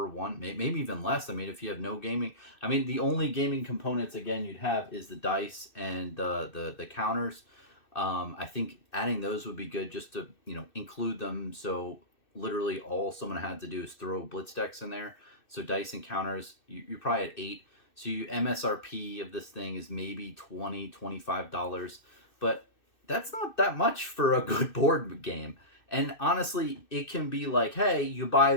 one, maybe even less. I mean, if you have no gaming, I mean, the only gaming components again you'd have is the dice and the counters. I think adding those would be good just to include them. So literally all someone had to do is throw blitz decks in there. So dice and counters, you're probably at 8. So you MSRP of this thing is maybe $20-$25, but that's not that much for a good board game. And honestly, it can be like, hey, you buy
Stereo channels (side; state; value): right; late; 2.6 ms